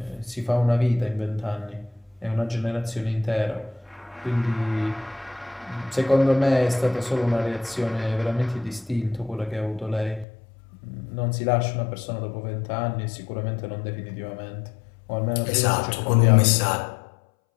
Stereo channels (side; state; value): right; drops out; at 10.2 s